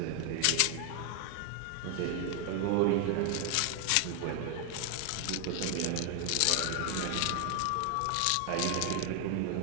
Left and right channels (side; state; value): both; different; correlation 0.00